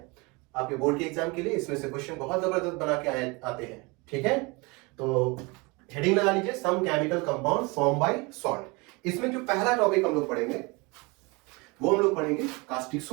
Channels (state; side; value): quieter; left; 26.9 dB